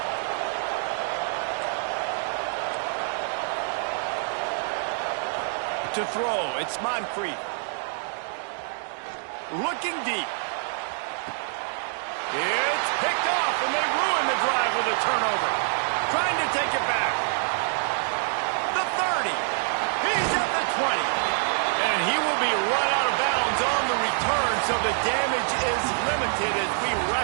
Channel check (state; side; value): silent; left; 61 dB below the other